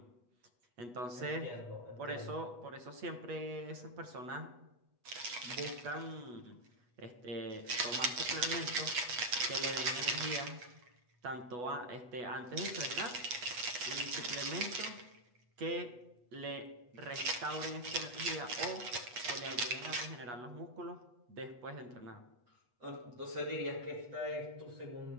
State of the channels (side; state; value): left; late; 8.2 ms